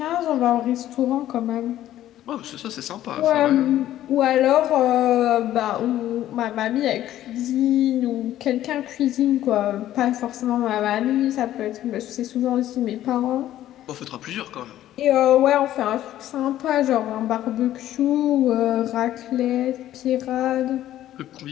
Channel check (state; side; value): quieter; right; 13.0 dB